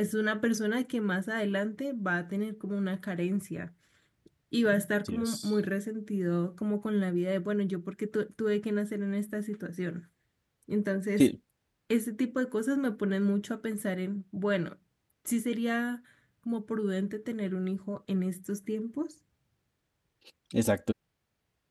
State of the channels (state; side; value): identical; both; correlation 1.00